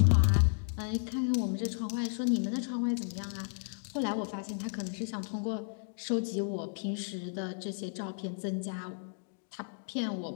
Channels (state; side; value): silent; right; digital silence